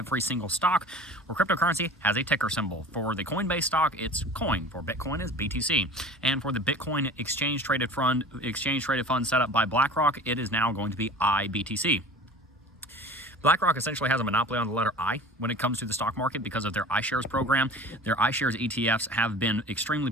single stock or cryptocurrency has a ticker symbol. For the Coinbase stock, it's coin. For Bitcoin, it's BTC. And for the Bitcoin exchange-traded fund set up by BlackRock, it is now going to be IBTC. BlackRock essentially has a monopoly on the letter I when it comes to the stock market because of their iShares program. Their iShares ETFs have been extremely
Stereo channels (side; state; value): both; normal; correlation 0.40